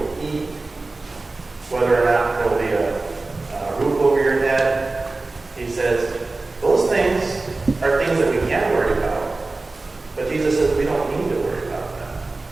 eat, whether or not there will be a roof over your head. He says, those things are things that we can worry about. But Jesus says we don't need to worry about them.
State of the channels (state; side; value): quieter; left; 3.3 dB